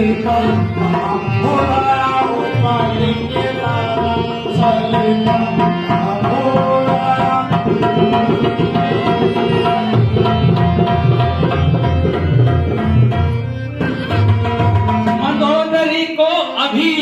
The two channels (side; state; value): both; identical; correlation 1.00